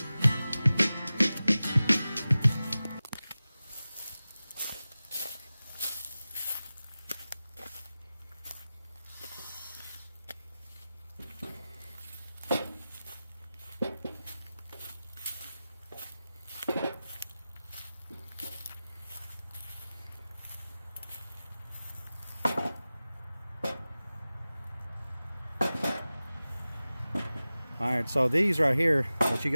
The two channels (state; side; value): inverted; both; correlation -0.96